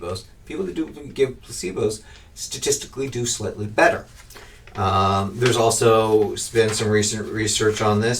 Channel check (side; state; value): both; identical; correlation 1.00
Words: people that do give placebos statistically do slightly better. There's also been some recent research on